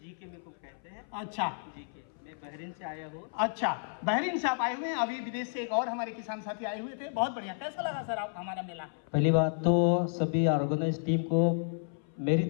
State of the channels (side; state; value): right; silent; 57 dB below the other